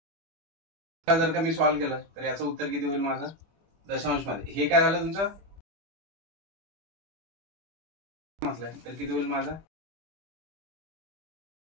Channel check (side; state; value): left; late; 25 ms